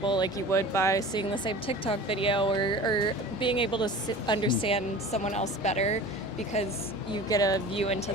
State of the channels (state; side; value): normal; both; correlation 0.39